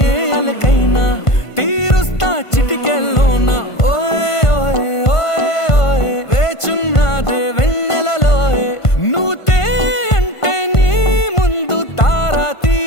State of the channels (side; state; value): right; late; 1.5 ms